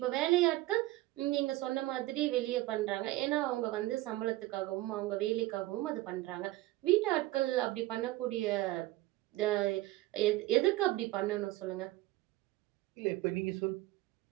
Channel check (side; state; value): left; quieter; 17.7 dB